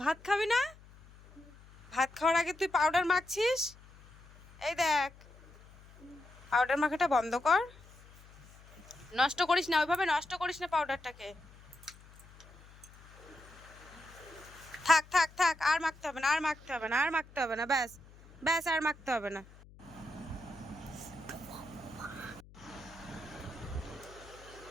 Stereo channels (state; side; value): noise; left; hum, 22 dB below the sound